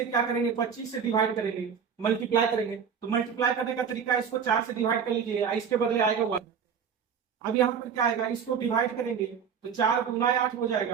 क्या करेंगे? 25 से डिवाइड करेंगे, मल्टीप्लाई करेंगे। तो मल्टीप्लाई करने का तरीका इसको 4 से डिवाइड कर लीजिए, इसके बदले आएगा 1। अब यहाँ पर क्या आएगा? इसको डिवाइड करेंगे तो 4 दूना 8 हो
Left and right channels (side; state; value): left; quieter; 7.0 dB